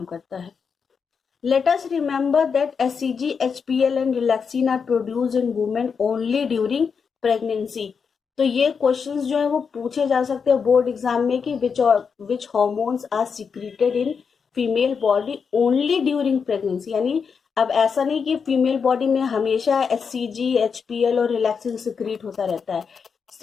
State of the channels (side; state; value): right; quieter; 6.0 dB